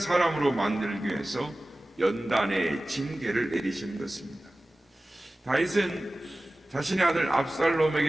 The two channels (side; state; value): both; normal; correlation 0.97